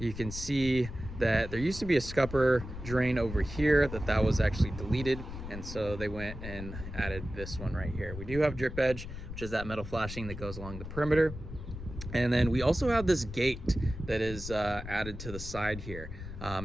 can see that there used to be a scupper drain over here that was actually deleted, and so they went and added this one right here. We do have drip edge, which is that metal flashing that goes along the perimeter. And then we also have this gate that is added to the side here.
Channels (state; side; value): noise; left; rumble, 9 dB below the sound